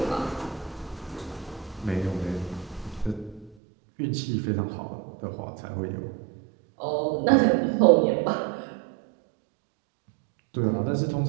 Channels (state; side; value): drops out; left; at 3.6 s